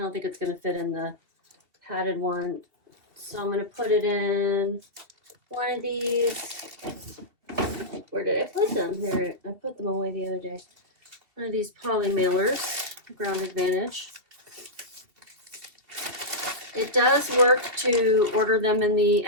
think it's going to fit in the padded one, so I'm going to put it in one of these. Where did I put them? There, I put them away the other day. One of these poly mailers, Ground Advantage. It does work to order them in the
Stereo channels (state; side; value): late; left; 2.7 ms